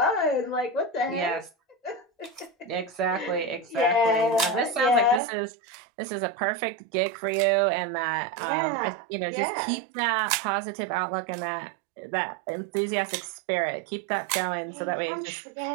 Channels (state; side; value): drops out; left; at 5.2 s